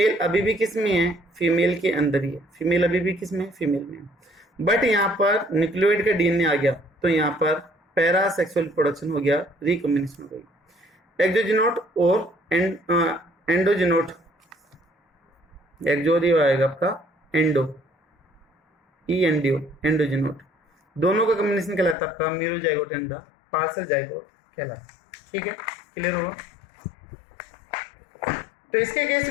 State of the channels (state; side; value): drops out; right; at 22.0 s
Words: अभी भी किस में है, फीमेल के अंदर ही है, फीमेल अभी भी किस में, फीमेल में। बट यहाँ पर न्यूक्लियोइड का डीएनए आ गया तो यहाँ पर पैरासेक्सुअल प्रोडक्शन हो गया, रिकॉम्बिनेशन हो गई। एक्सोजीनोट और एंडोजीनोट, एक्सो आएगा आपका एंडो, ENDO एंडोजीनोट, दोनों का कॉम्बिनेशन कहलाता है आपका मीरोजाइगोट एंड द पार्सल जाइगोट कहलाता है। ठीक है, क्लियर होगा। तो इसके केस